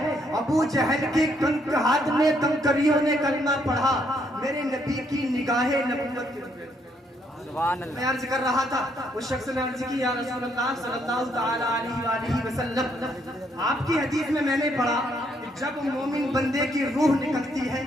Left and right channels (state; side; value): normal; both; correlation 0.71